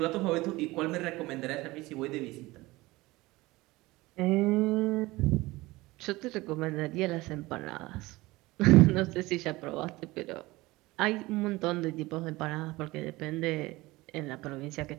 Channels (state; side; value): quieter; left; 20.4 dB